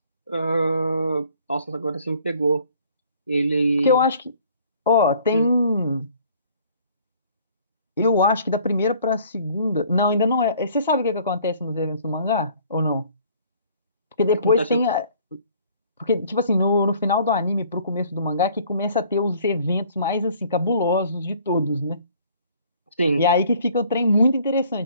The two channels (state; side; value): inverted; both; correlation -0.56